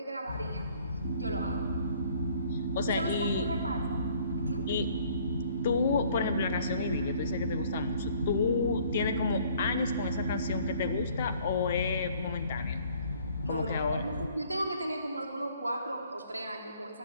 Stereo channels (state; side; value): inverted; both; correlation -0.58